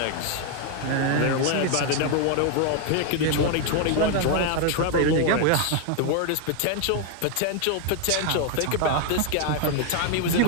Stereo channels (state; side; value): different; both; correlation 0.00